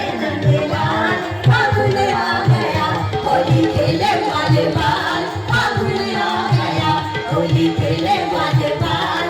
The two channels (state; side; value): identical; both; correlation 1.00